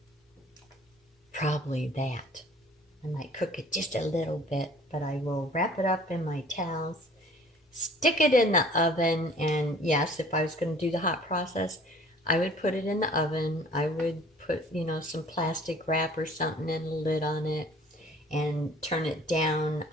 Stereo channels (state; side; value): normal; both; correlation 0.52